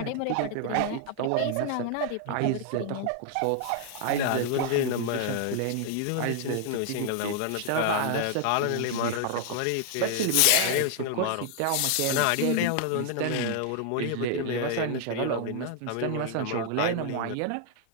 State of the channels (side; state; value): both; different; correlation 0.00